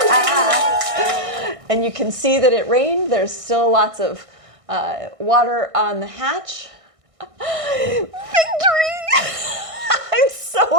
And you can see that it rained. There's still lots of water on the hatch. Victory! I'm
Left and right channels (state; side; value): late; left; 1.6 ms